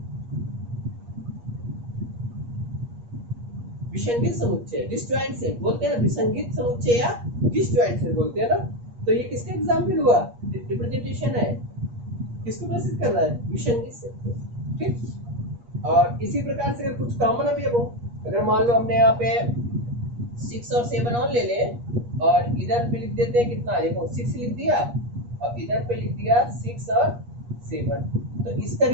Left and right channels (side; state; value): left; late; 8.4 ms